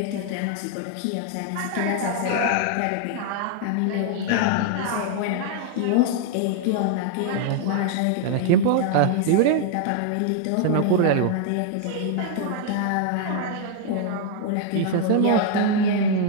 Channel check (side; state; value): both; different; correlation 0.00